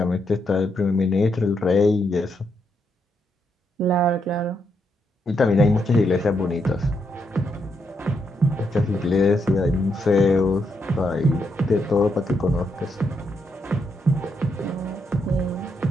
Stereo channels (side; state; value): both; normal; correlation 0.80